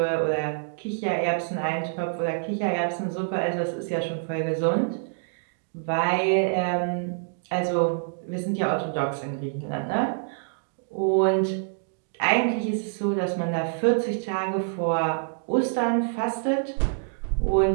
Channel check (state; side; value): silent; left; digital silence